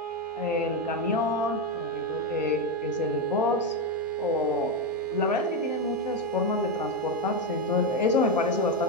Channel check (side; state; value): both; normal; correlation 0.09